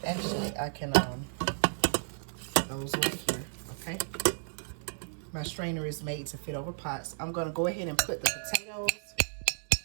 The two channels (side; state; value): left; silent; digital silence